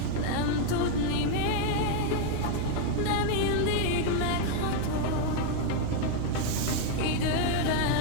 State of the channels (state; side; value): different; both; correlation 0.01